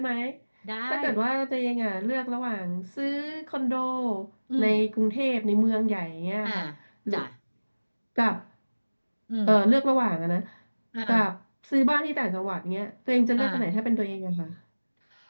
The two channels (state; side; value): inverted; both; correlation -1.00